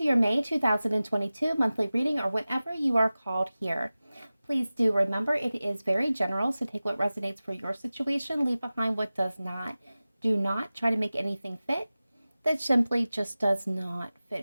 your May 2022 monthly reading, or whenever you are called here. Please do remember it is very general, so take what resonates for your situation, leave behind what does not. Do not try to make anything fit that simply just does not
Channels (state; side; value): inverted; both; correlation -0.97